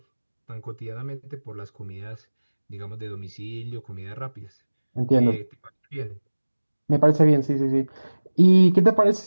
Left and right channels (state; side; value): inverted; both; correlation -1.00